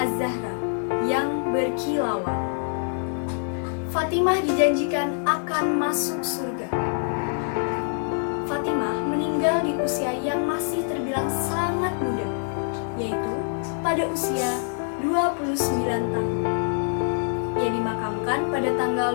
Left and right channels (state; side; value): silent; right; digital silence